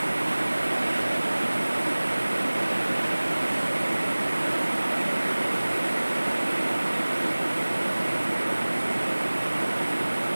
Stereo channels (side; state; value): both; inverted; correlation -1.00